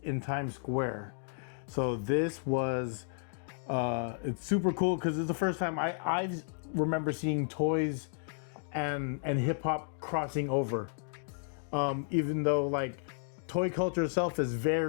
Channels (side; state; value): right; silent; digital silence